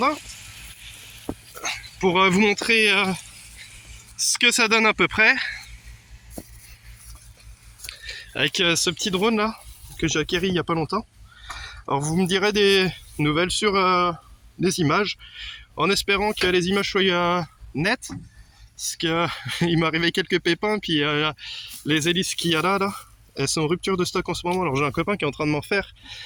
Pour vous montrer ce que ça donne à peu près. Avec ce petit drone là, que j'ai acquéri il n'y a pas longtemps. Alors vous me direz des nouvelles sur les images, en espérant que les images soient nettes. Parce qu'il m'est arrivé quelques pépins, puis les hélices qu'il y a là, elles sont en rupture de stock en ce moment. Alors j'ai un copain qui est en train de m'en faire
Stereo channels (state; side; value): identical; both; correlation 1.00